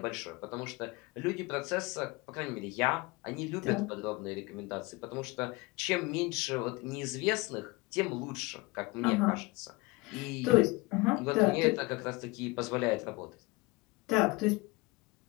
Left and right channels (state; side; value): quieter; right; 24.4 dB